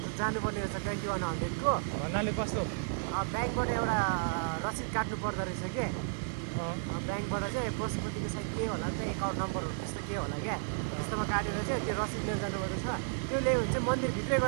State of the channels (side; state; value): left; silent; digital silence